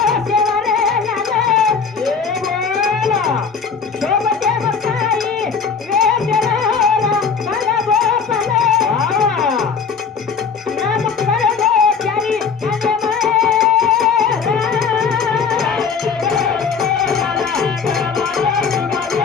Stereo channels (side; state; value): right; quieter; 5.8 dB